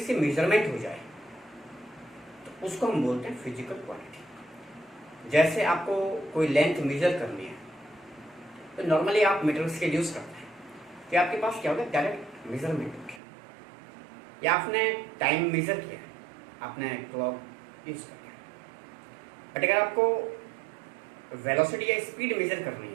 मेजरमेंट हो जाए तो उसको हम बोलते हैं फिजिकल क्वांटिटी। जैसे आपको कोई लेंथ मेजर करनी है तो नॉर्मली आप मीटर स्केल यूज करते हैं, तो आपके पास क्या होगा, डायरेक्ट मेजरमेंट हो गया, या आपने टाइम मेजर किया, आपने क्लॉक यूज कर लिया। बट अगर आपको वेलोसिटी या स्पीड मेजर करनी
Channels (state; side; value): drops out; left; at 13.2 s